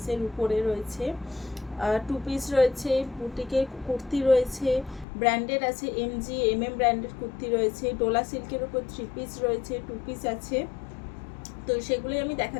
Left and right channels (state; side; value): drops out; right; at 5.1 s